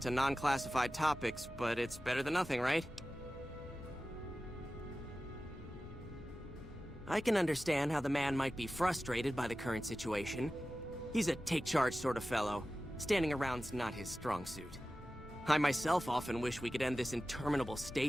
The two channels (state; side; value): normal; both; correlation 0.95